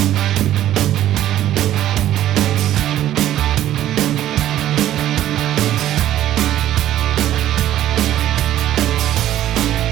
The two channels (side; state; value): left; quieter; 12.6 dB